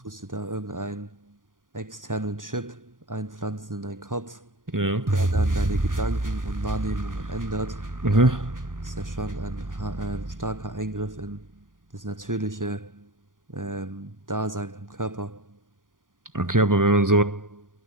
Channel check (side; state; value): left; late; 0.89 ms